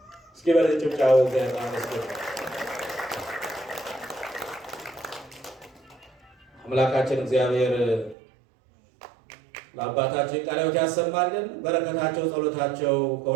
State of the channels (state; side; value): drops out; left; at 8.2 s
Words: እስኪ በጭብጨባው እግዚአብሔር ይመስገን። አምላካችን እግዚአብሔር ለአባታችን ቃለ ሕይወት ያሰማልን። በረከታቸው ጸሎታቸው